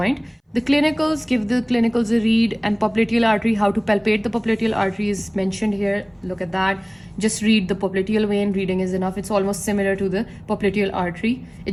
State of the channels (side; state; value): both; identical; correlation 1.00